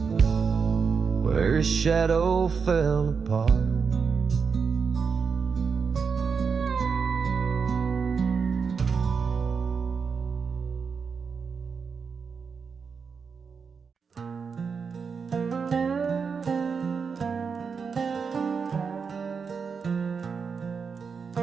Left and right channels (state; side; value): quieter; left; 5.7 dB